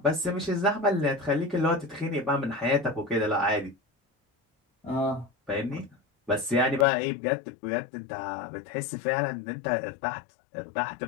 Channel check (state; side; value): drops out; right; at 6.9 s